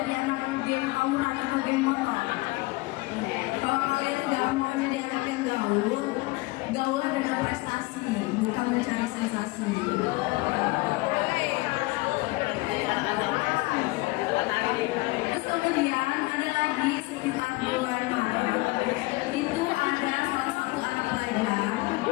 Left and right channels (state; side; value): quieter; right; 22.6 dB